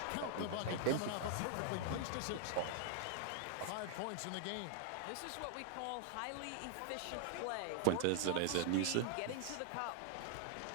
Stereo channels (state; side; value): different; both; correlation -0.01